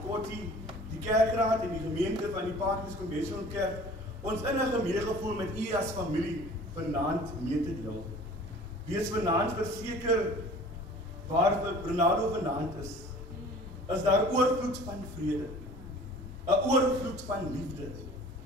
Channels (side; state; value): both; normal; correlation 0.46